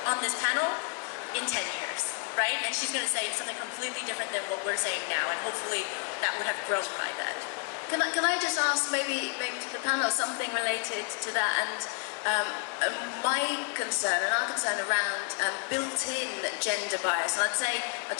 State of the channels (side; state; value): right; quieter; 37.3 dB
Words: on this panel in 10 years, right? And she's going to say something completely different than what we're saying now, and hopefully that would have grown by then. Can I just ask maybe to the panel something related to that, and my concern and our concern around built-in gender bias, and I'd